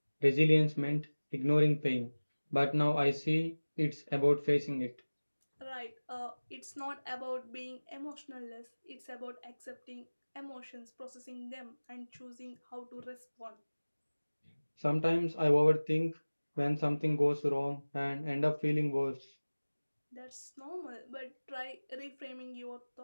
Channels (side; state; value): both; inverted; correlation -1.00